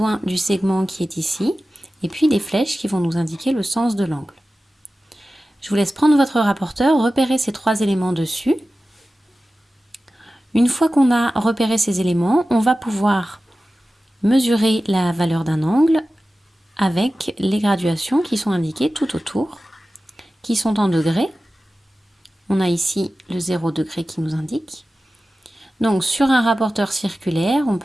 du segment qui est ici et puis des flèches qui vont nous indiquer le sens de l'angle. Je vous laisse prendre votre rapporteur, repérer ces trois éléments dessus. Une fois qu'on a repéré ces éléments, on va pouvoir mesurer la valeur d'un angle avec les graduations qui sont indiquées tout autour, qui sont en degrés. On a ici le 0 degré qui nous indique. Donc sur un rapporteur circulaire, on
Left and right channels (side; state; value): both; normal; correlation 0.95